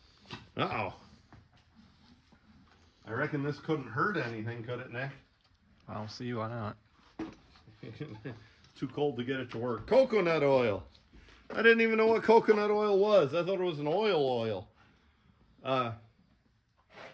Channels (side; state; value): both; identical; correlation 1.00